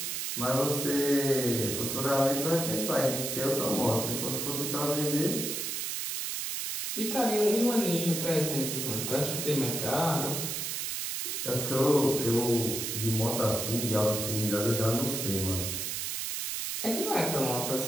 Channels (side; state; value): right; noise; hiss, 2 dB below the sound